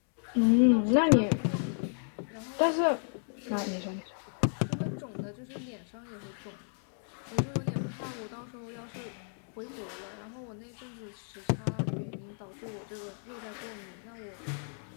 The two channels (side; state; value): right; silent; 56 dB below the other